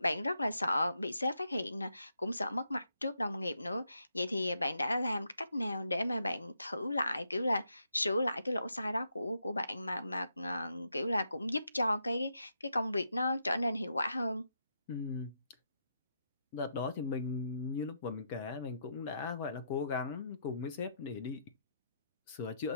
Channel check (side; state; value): both; inverted; correlation -0.80